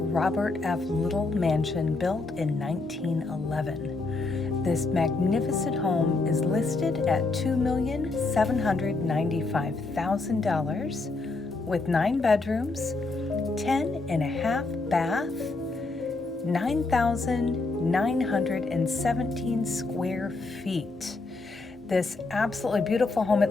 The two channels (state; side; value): quieter; right; 3.5 dB